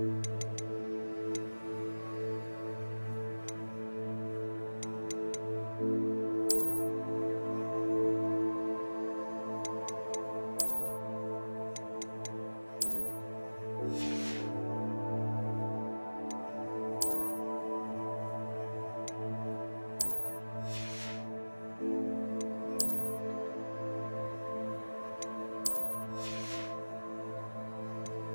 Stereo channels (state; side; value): inverted; both; correlation -1.00